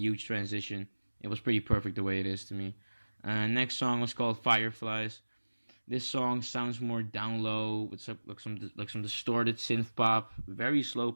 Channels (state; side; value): inverted; both; correlation -1.00